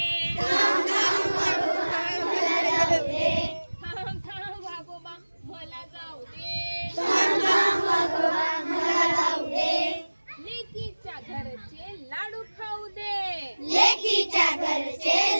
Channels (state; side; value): inverted; both; correlation -1.00